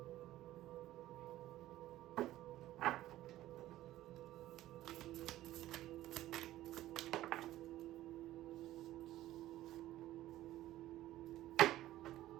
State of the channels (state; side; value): quieter; left; 14.7 dB